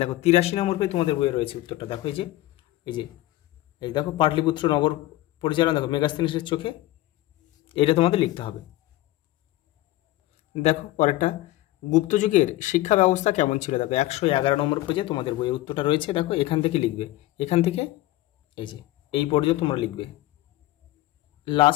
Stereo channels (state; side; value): quieter; right; 16.7 dB